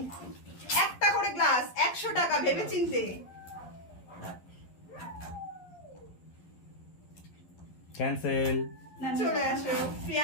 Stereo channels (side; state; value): right; late; 11 ms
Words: একটা করে গ্লাস, 100 টাকা, ভেবে চিনতে। ক্যান্সেল। চলে আসো